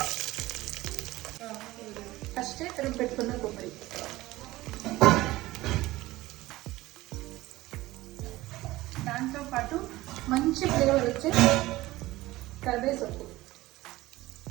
ఫస్ట్ తురుము పెట్టుకున్న కొబ్బరి, దాంతో పాటు మంచి ఫ్లేవర్ వచ్చే కరివేపాకు,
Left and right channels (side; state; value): left; quieter; 18.0 dB